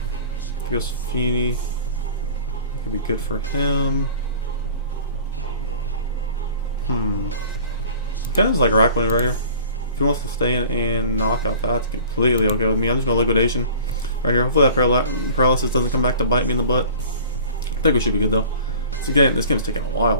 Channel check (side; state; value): both; inverted; correlation -0.45